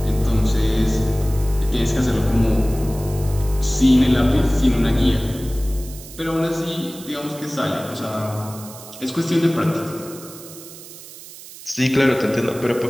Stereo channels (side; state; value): right; noise; hiss, 16 dB below the sound